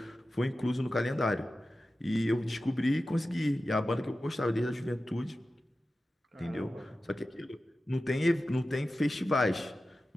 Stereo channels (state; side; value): normal; both; correlation 0.94